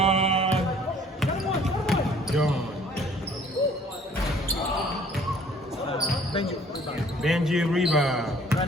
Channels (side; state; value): both; normal; correlation 0.55